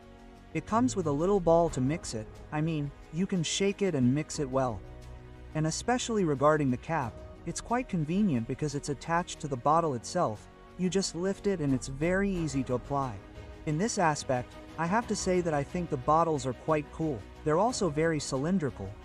It comes with a little ball to mix it, you can shake it and mix it well. And especially regarding the cap, it's quite convenient because it's attached to the bottle itself, you just lift it and it's very easy to apply. In this aspect, I have to say that I think the bottles are quite cool. They're also very cylindrical,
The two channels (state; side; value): identical; both; correlation 1.00